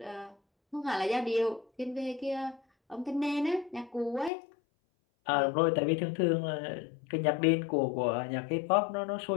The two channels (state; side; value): drops out; right; at 4.3 s